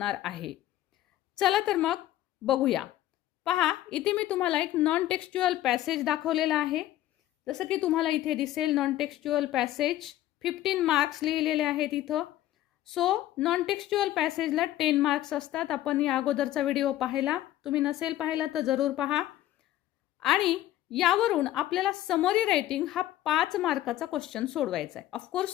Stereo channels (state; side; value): quieter; right; 13.9 dB